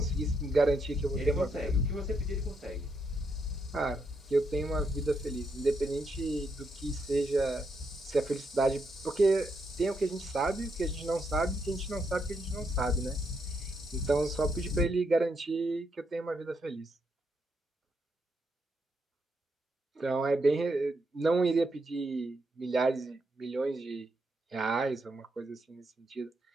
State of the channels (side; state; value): both; normal; correlation 0.79